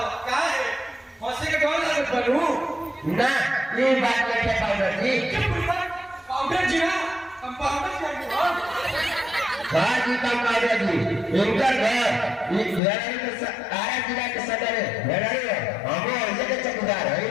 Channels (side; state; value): right; drops out; at 12.8 s